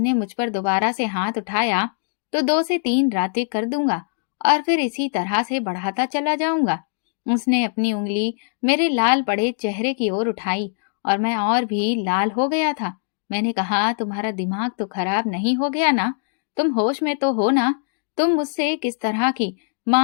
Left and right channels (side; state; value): right; silent; digital silence